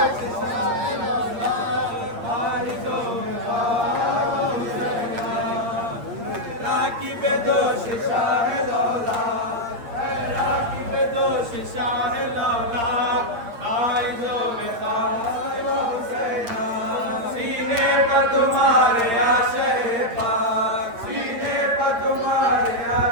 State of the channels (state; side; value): late; left; 8.7 ms